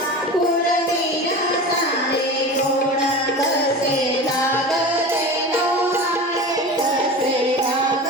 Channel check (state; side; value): normal; both; correlation 0.32